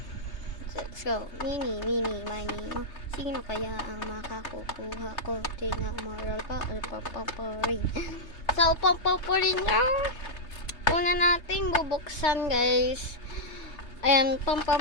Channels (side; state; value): right; late; 3.3 ms